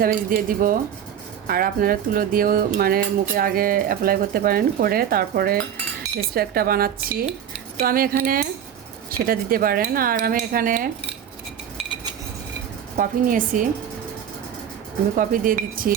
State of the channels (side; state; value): left; quieter; 9.2 dB